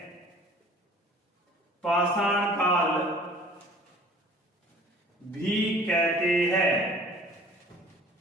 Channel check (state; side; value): normal; both; correlation 0.50